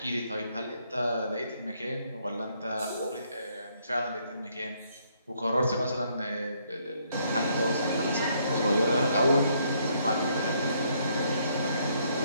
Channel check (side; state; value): both; inverted; correlation -0.70